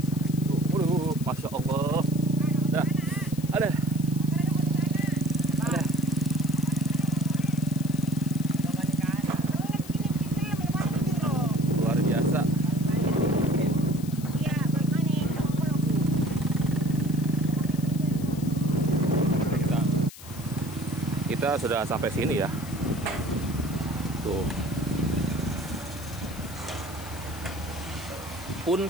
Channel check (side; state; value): left; noise; hiss, 16 dB below the sound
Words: Masya Allah. Dah, ada. Luar biasa. Kita sudah sampai sini ya. Tuh. Pun